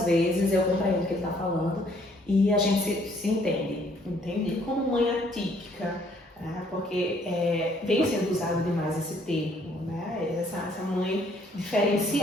vezes eu compreendo o que ele está falando e a gente se entende. Entendi. Como mãe atípica, porque vem sendo usado demais esse termo, né? Essa mãe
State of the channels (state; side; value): normal; both; correlation 0.64